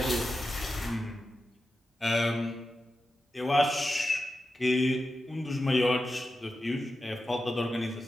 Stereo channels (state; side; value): normal; both; correlation 0.91